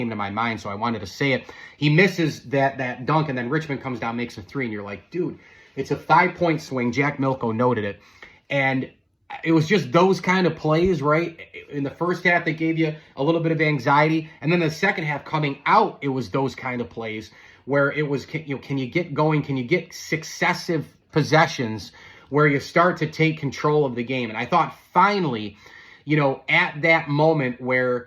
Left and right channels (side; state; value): both; identical; correlation 1.00